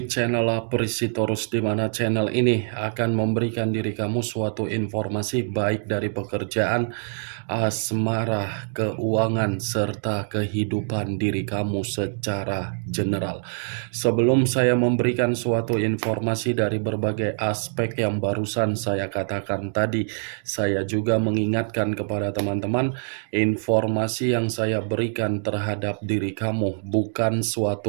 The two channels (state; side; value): silent; left; digital silence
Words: channel Aprisitorus, di mana channel ini akan memberikan diri kamu suatu informasi baik dari pekerjaan, asmara, keuangan, serta kehidupan diri kamu secara general. Sebelum saya memberikan suatu informasi dari berbagai aspek yang barusan saya katakan tadi, saya juga mengingatkan kepada teman-teman, informasi yang saya berikan terhadap diri kamu bukan